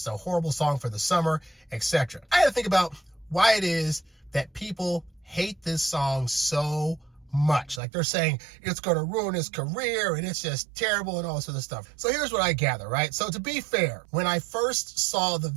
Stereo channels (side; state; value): left; drops out; at 7.8 s